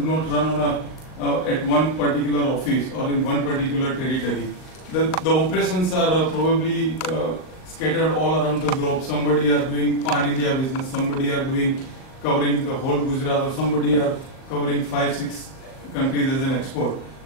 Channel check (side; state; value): right; late; 39 ms